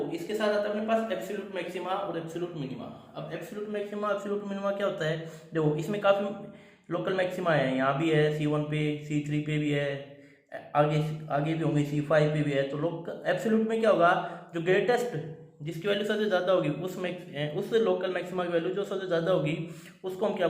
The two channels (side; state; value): both; identical; correlation 1.00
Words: इसके साथ आता है अपने पास एब्सोल्यूट मैक्सिमा और एब्सोल्यूट मिनिमा। अब एब्सोल्यूट मैक्सिमा एब्सोल्यूट मिनिमा क्या होता है, देखो इसमें काफी लोकल मैक्सिमा है, यहाँ भी है C1 पे, C3 पे भी है, आगे भी होंगे, C5 पे भी है। तो एब्सोल्यूट में क्या होगा, जो ग्रेटेस्ट जिसकी वैल्यू सबसे ज्यादा होगी उस लोकल मैक्सिमा की वैल्यू जो सबसे ज्यादा होगी उसको हम क्या